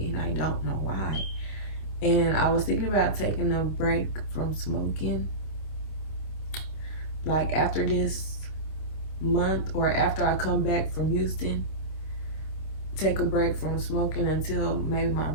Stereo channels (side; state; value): right; late; 26 ms